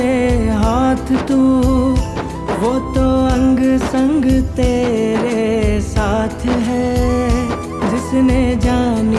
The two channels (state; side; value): identical; both; correlation 1.00